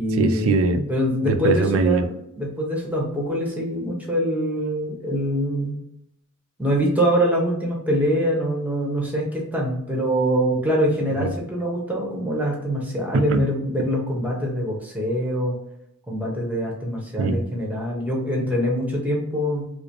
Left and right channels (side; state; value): both; normal; correlation 0.39